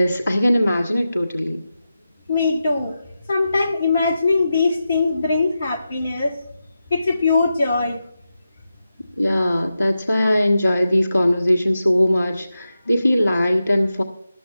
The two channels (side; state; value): both; inverted; correlation -0.90